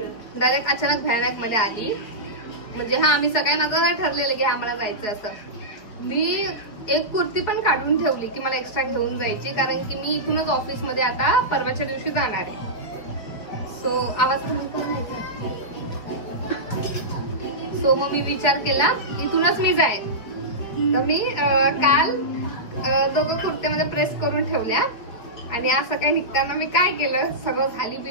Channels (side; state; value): right; late; 4.9 ms